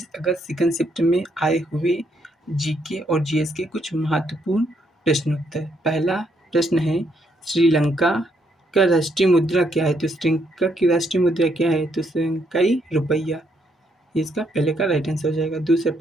अगस्त सेकंड शिफ्ट में आए हुए जीके और जीएस के कुछ महत्वपूर्ण प्रश्नोत्तर। पहला प्रश्न है, श्रीलंका का राष्ट्रीय मुद्रा क्या है? तो श्रीलंका की राष्ट्रीय मुद्रा क्या है? तो श्रीलंकाई रुपया। इसका पहले का राइट आंसर हो जाएगा। दूसरा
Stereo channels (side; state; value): both; normal; correlation 0.74